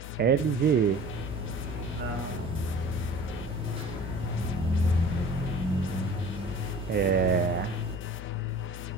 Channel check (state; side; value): normal; both; correlation 0.43